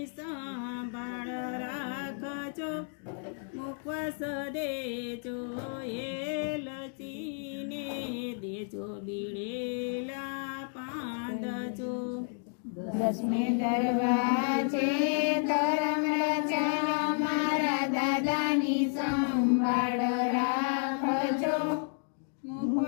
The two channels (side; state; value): right; silent; 57 dB below the other